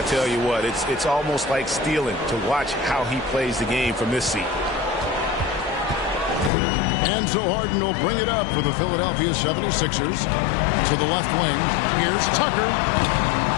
tell you what, it's almost like stealing to watch how he plays the game from this seat. And so Harden will bring it up for the Philadelphia 76ers. To the left wing. Here's Tucker.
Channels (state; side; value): drops out; right; at 6.5 s